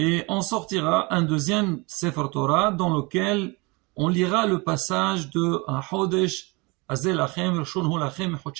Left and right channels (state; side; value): quieter; left; 27.0 dB